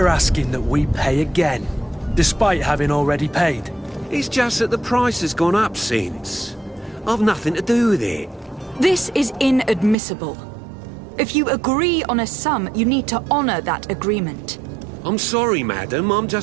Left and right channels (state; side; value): drops out; left; at 10.0 s